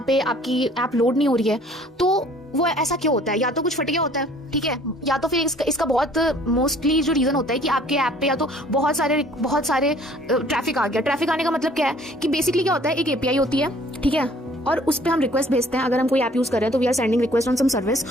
पे आपकी ऐप लोड नहीं हो रही है, तो वो ऐसा क्यों होता है? या तो कुछ फट गया होता है, ठीक है, या तो फिर इसका बहुत मोस्टली जो रीजन होता है कि आपके ऐप पे या तो बहुत सारे ट्रैफिक आ गया. ट्रैफिक आने का मतलब क्या है कि बेसिकली क्या होता है, एक एपीआई होती है, ठीक है, और उस पर हम रिक्वेस्ट भेजते हैं. अगर हम कोई ऐप यूज कर रहे हैं तो we are sending request on some service,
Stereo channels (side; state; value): both; normal; correlation 0.55